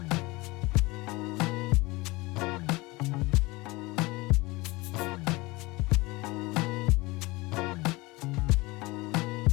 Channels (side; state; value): right; quieter; 22.7 dB